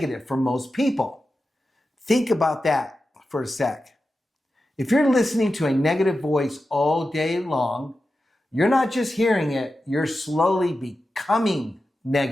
for most people. Think about that for a sec. If you're listening to a negative voice all day long, you're not just hearing it, you're slowly becoming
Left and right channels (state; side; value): normal; both; correlation 0.92